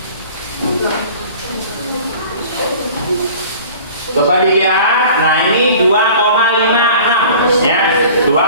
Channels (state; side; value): inverted; both; correlation -0.45